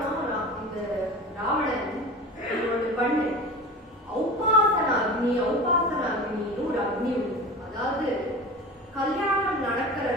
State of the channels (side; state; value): both; normal; correlation 0.33